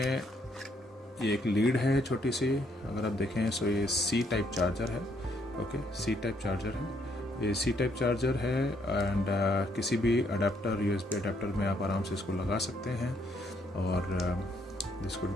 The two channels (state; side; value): normal; both; correlation 0.70